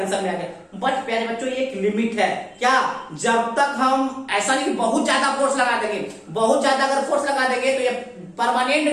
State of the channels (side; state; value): both; identical; correlation 1.00